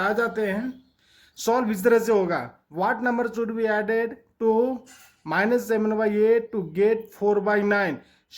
जाते हैं। सॉल्व इस तरह से होगा। What number should be added to -7/8 to get 4/9।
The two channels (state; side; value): identical; both; correlation 1.00